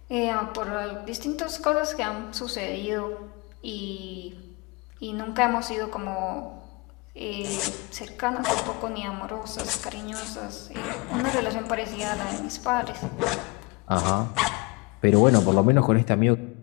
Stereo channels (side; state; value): right; quieter; 28.1 dB